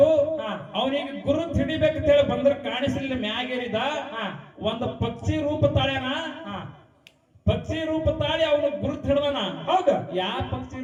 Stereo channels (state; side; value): identical; both; correlation 1.00